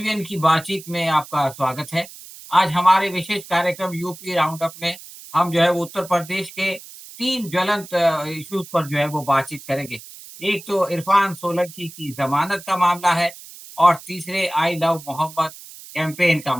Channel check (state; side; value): noise; right; hiss, 17 dB below the sound